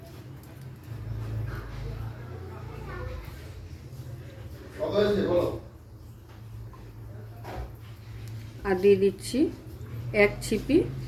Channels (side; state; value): both; identical; correlation 1.00